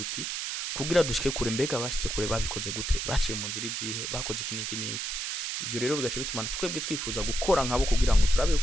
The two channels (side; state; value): right; noise; hiss, 3 dB below the sound